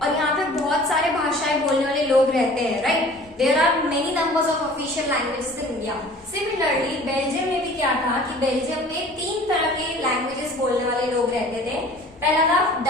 और यहाँ पे बहुत सारे भाषाएं बोलने वाले लोग रहते हैं, right. There are many numbers of official languages in India. Similarly Belgium में भी क्या था कि बेल्जियम में 3 तरह के लैंग्वेजेस बोलने वाले लोग रहते थे. पहला था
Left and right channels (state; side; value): normal; both; correlation 0.47